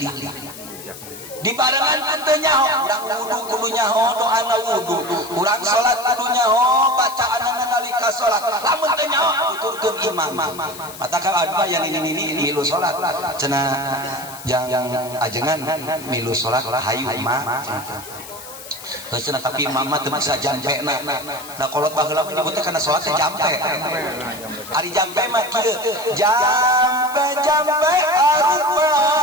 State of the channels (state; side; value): noise; left; hiss, 15 dB below the sound